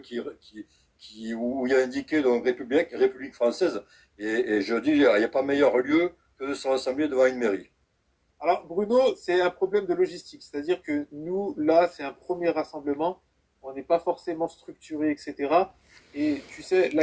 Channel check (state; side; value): identical; both; correlation 1.00